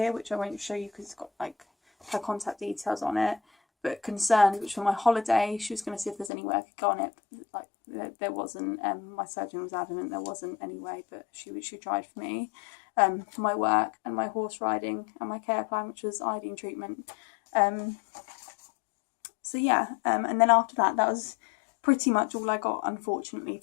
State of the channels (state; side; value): drops out; right; at 6.3 s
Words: which I won't show you because it's got like her contact details on it. But concerns, which for my holiday, she was going to see if there's any way I could go on it. Like there wasn't. My surgeon was adamant there wasn't any way, but she tried for me. For my work and my horse riding and my care plan, which was iodine treatment. So yeah, and then after that was pretty much all I got, unfortunately,